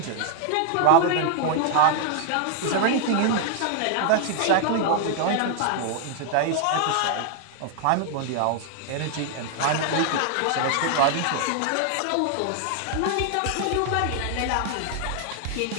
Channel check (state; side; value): different; both; correlation 0.00